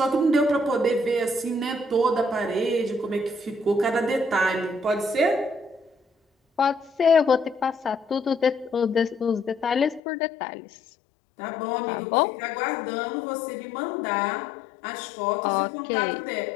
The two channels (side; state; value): right; drops out; at 10.0 s